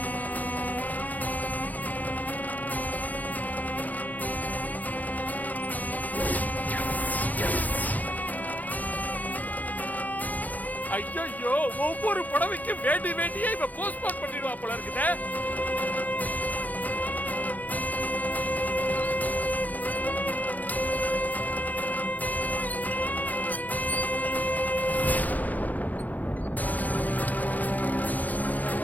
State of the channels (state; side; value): late; right; 0.080 ms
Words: ஐயோ, ஒவ்வொரு புடவைக்கு வேண்டியே இவ போஸ்ட்போன் பண்ணிடுவா போல இருக்குதே.